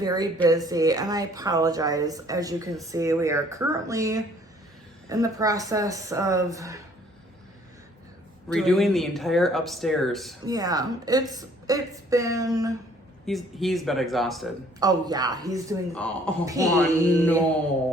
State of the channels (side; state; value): both; normal; correlation 0.59